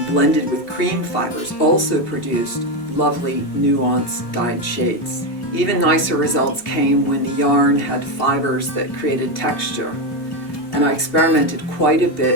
blended with cream fibers, also produced lovely nuanced dyed shades. Even nicer results came when the yarn had fibers that created texture. And I experimented quite a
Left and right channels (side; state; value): right; late; 2.8 ms